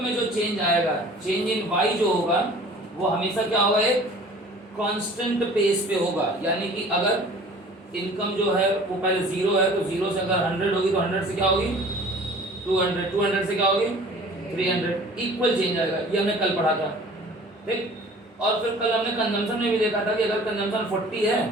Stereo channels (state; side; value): normal; both; correlation 0.47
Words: में जो चेंज आएगा, चेंज इन वाई जो होगा वो हमेशा क्या होगा, एक कांस्टेंट पेस पे होगा। यानी कि अगर इनकम जो है वो पहले 0 है तो 0 से अगर 100 होगी तो 100 से क्या होगी 200, 200 से क्या होगी 300, इक्वल चेंज आएगा। ये हमने कल पढ़ा था, ठीक। और फिर कल हमने कंजम्पशन में भी देखा था कि अगर कंजम्पशन 40 है